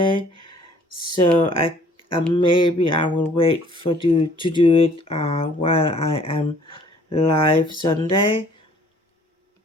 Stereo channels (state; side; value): normal; both; correlation 0.57